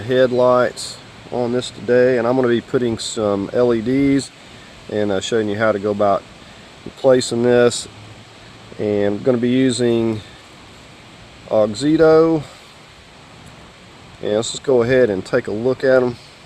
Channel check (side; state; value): both; identical; correlation 1.00